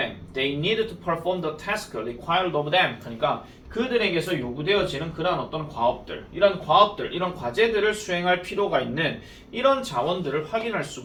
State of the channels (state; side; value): identical; both; correlation 1.00